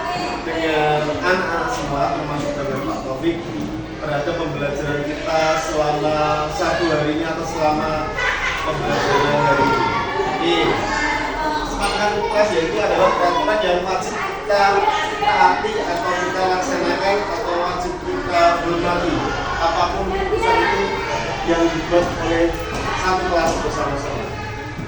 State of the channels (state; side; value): identical; both; correlation 1.00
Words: dengan anak-anak semua, termasuk dengan Pak Taufik, terhadap pembelajaran kita selama satu hari ini atau selama pembelajaran hari ini. Oke, kesepakatan kelas yaitu adalah peraturan yang wajib kita taati atau kita laksanakan atau wajib kita hormati apapun keputusan itu yang dibuat oleh satu kelas bersama-sama.